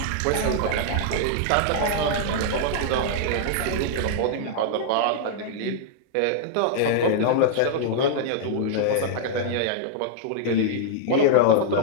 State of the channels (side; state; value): both; different; correlation -0.01